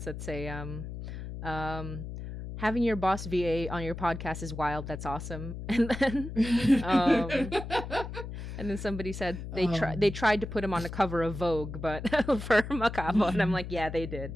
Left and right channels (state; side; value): noise; left; hum, 8 dB below the sound